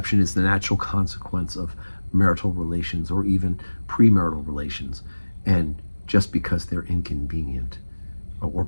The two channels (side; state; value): both; inverted; correlation -1.00